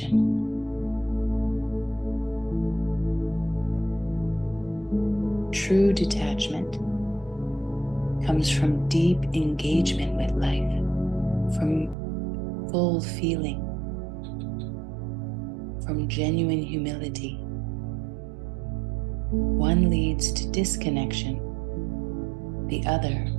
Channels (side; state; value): left; drops out; at 12.0 s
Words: True detachment comes from deep engagement with life, from full feeling, from genuine humility. One leads to disconnection, the other